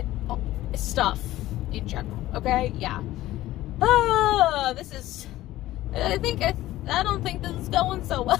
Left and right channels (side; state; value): right; quieter; 15.6 dB